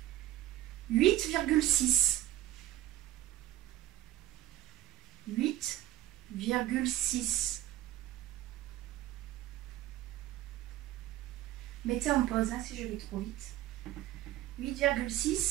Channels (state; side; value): quieter; left; 14.5 dB